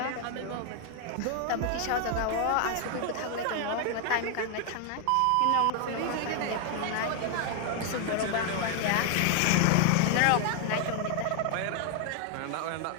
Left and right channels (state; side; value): different; both; correlation 0.00